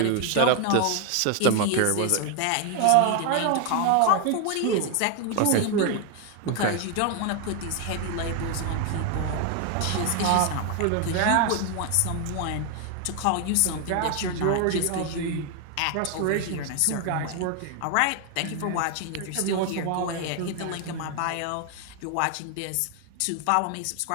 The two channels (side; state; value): both; different; correlation 0.01